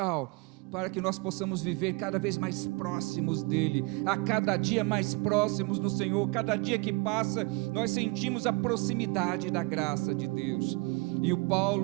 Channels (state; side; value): quieter; left; 26.6 dB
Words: para que nós possamos viver cada vez mais próximos dEle, a cada dia mais próximos do Senhor. Cada dia que passa, nós sentimos a proximidade da graça de Deus. E o